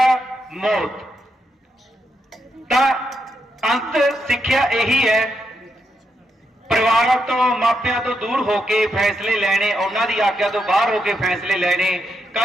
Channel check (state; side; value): normal; both; correlation 0.82